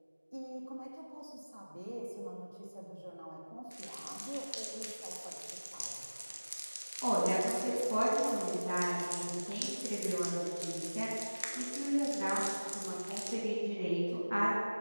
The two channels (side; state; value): both; inverted; correlation -1.00